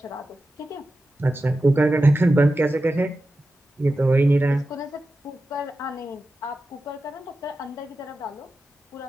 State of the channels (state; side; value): normal; both; correlation 0.92